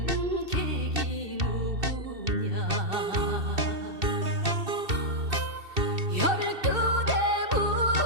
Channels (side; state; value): left; late; 2.7 ms